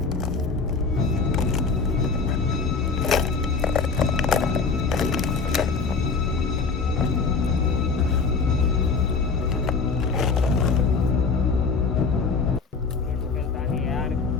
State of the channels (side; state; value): right; quieter; 4.7 dB